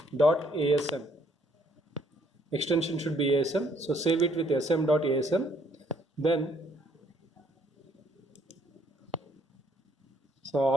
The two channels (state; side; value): normal; both; correlation 0.66